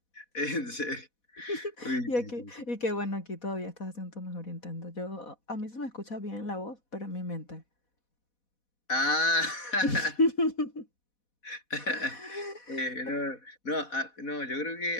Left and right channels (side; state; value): right; late; 4.1 ms